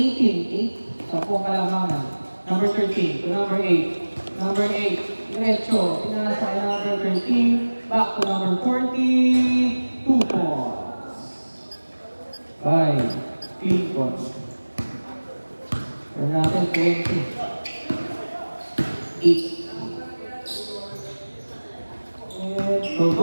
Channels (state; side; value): inverted; both; correlation -1.00